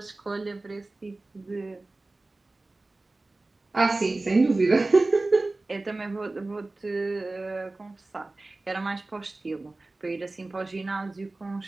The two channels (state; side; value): quieter; left; 3.1 dB